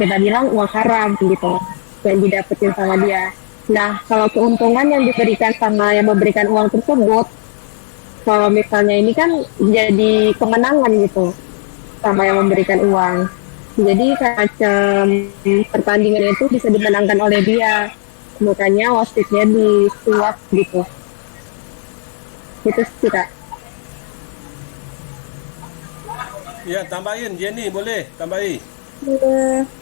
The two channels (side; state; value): right; silent; digital silence